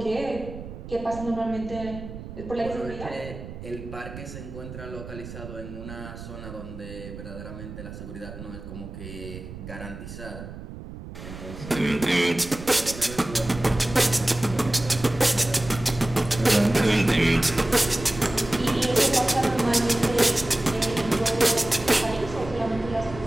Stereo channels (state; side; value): noise; right; rumble, 12 dB below the sound